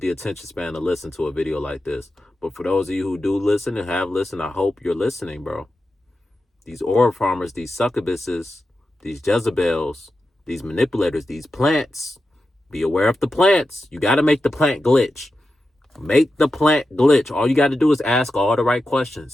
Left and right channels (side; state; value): both; normal; correlation 0.91